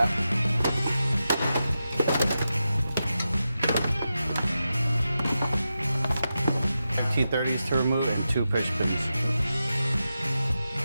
T30s to remove and 2 push pins.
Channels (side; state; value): both; inverted; correlation -0.90